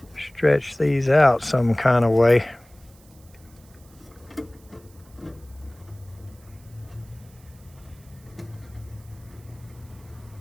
stretch these out some kind of way.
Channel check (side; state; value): right; noise; hiss, 28 dB below the sound